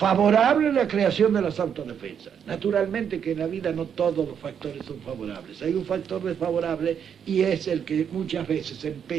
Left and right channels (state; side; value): quieter; left; 7.9 dB